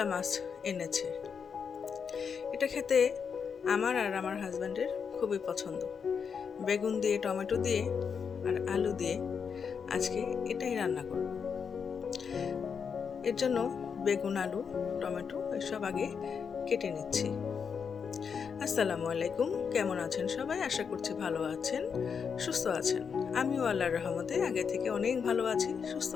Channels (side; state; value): right; quieter; 6.4 dB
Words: মাছ এনেছে। এটা খেতে আমার আর আমার হাজব্যান্ডের খুবই পছন্দ। বেগুন দিয়ে, টমেটো দিয়ে আর আলু দিয়ে আজকে এটাই রান্না করব। এর জন্য বেগুন, আলু, টমেটো এসব আগে কেটে নিচ্ছি। আসসালামু আলাইকুম, কেমন আছেন সবাই? আশা করছি ভালো আছেন, সুস্থ আছেন। আমিও আল্লাহর রহমতে আগে থেকে অনেক ভালো আছি, সুস্থ